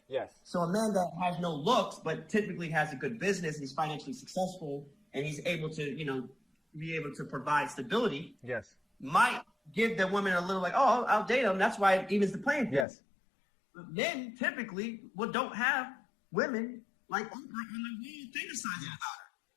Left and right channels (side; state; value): right; drops out; at 12.9 s